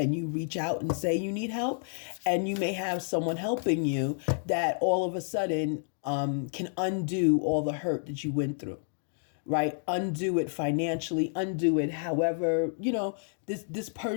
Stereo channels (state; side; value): silent; right; digital silence